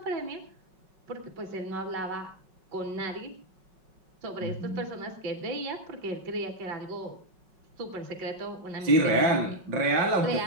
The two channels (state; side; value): late; left; 5.4 ms